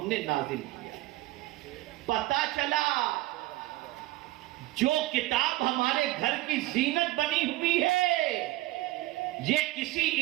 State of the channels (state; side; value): quieter; left; 17.8 dB